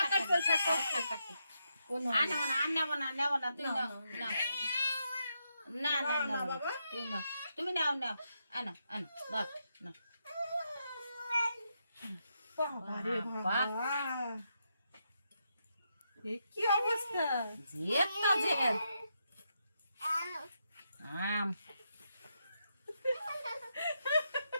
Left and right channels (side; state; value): both; inverted; correlation -0.82